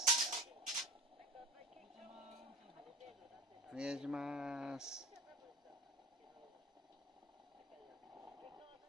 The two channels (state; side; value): normal; both; correlation 0.35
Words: お願いします。